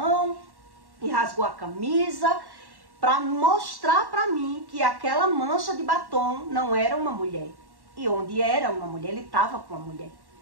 e rasgou a camisa, para mostrar para mim que aquela mancha de batom não era uma mulher. E onde era uma mulher, ele estava com uma mulher.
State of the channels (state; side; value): late; left; 1.1 ms